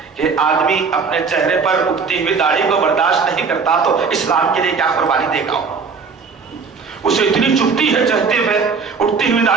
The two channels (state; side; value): quieter; left; 5.2 dB